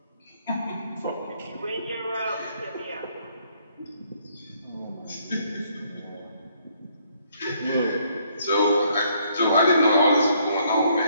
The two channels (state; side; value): inverted; both; correlation -0.67